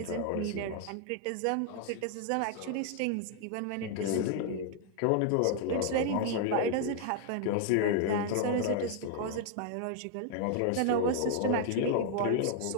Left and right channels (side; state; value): both; different; correlation 0.00